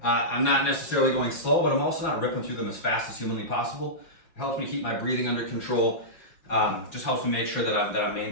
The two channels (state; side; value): late; right; 5.6 ms